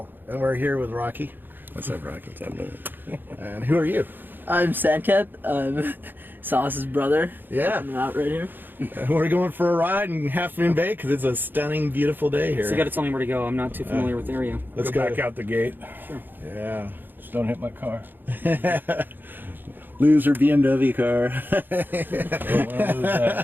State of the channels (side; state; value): left; late; 0.093 ms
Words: And we're here with Rocky. What's up, Rocky? What's up, And who are you? I'm Sandcat. I'm Sauce's brother. Yeah. I'm out right here. We're going for a ride in Half Moon Bay because it's a stunning, beautiful day here. So you got to tell me where to go. I'm not too familiar with the area. Let's go back out the gate. Sure. Yeah. Just don't hit my car. Loser BMW car.